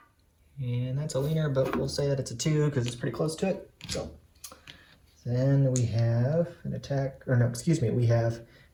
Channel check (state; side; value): identical; both; correlation 1.00